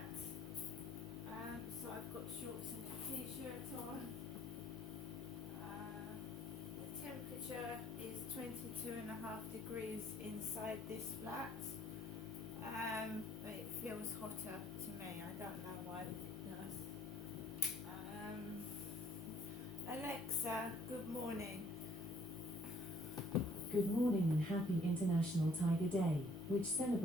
So I've got shorts and a t-shirt on. The temperature is 22.5 degrees inside this flat. But it feels hotter to me. I don't know why it does. Alexa, good morning. Good morning and happy International Tiger Day, which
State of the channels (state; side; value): normal; both; correlation 0.60